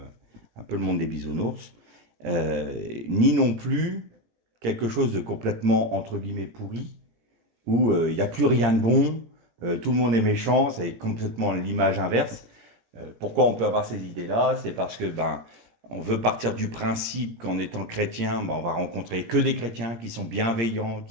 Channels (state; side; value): late; left; 17 ms